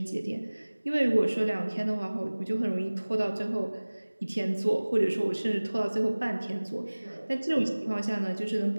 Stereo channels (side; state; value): both; inverted; correlation -1.00